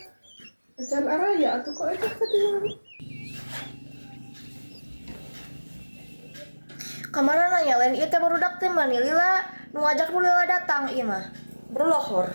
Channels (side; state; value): both; inverted; correlation -1.00